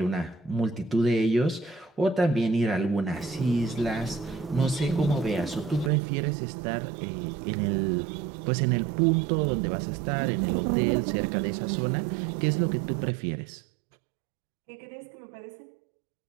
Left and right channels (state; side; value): drops out; left; at 5.9 s